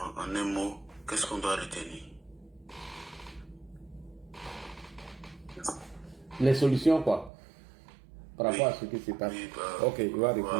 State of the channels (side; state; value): left; drops out; at 7.3 s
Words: un mot, qu'est-ce qu'on doit retenir? Les solutions quoi? Par rapport à ce qui se passe. Oui, ok, il va